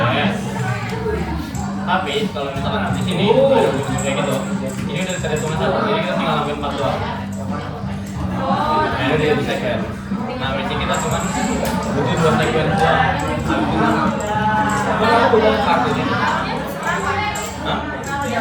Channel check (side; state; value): both; identical; correlation 1.00